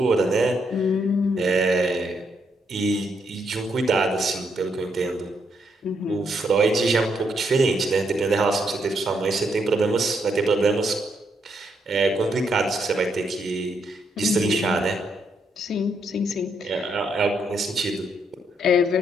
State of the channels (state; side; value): normal; both; correlation 0.76